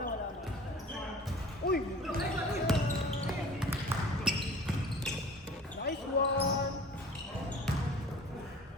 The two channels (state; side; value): normal; both; correlation 0.44